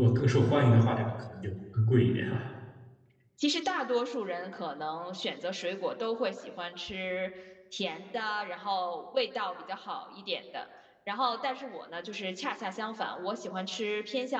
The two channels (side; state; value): both; identical; correlation 1.00